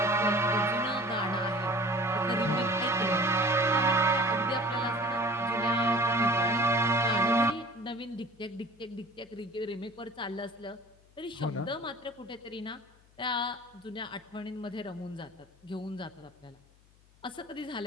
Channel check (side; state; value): left; noise; hum, 29 dB below the sound